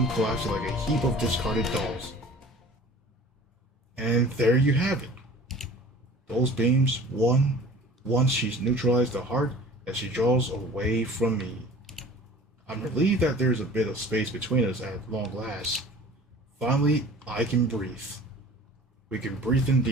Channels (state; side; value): normal; both; correlation 0.44